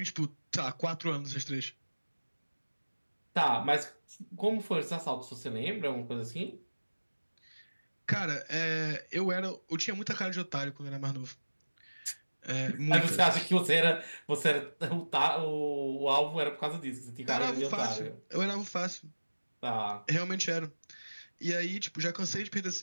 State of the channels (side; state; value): both; inverted; correlation -1.00